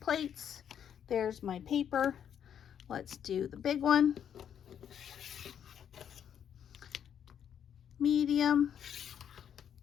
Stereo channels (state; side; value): quieter; right; 8.9 dB